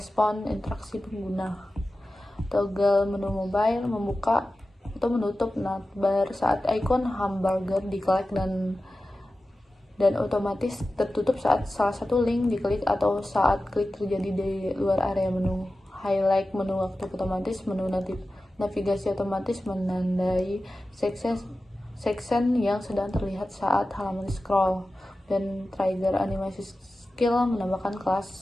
interaksi pengguna. Toggle menu mobile membuka atau menutup navbar saat ikon hamburger diklik dan otomatis tertutup saat salah satu link diklik atau saat klik terjadi di luar area menu. Highlight menu waktu otomatis, menu navigasi otomatis menandai section yang sedang terlihat saat halaman scroll, dan trigger animasi skill menambahkan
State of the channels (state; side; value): normal; both; correlation 0.94